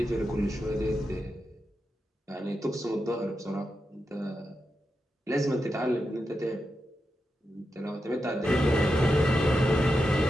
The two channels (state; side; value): normal; both; correlation 0.88